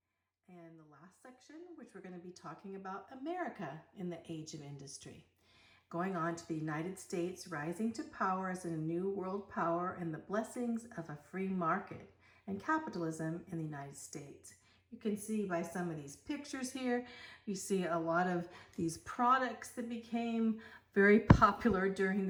and the last section, which we're going to be talking about America in the age of industry. Going on to the United States rising to power as a new world power and the blessings of a free market and capitalism in the United States. You can see by some of these pictures here, you see a lot of these products that became very popular during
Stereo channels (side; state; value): both; identical; correlation 1.00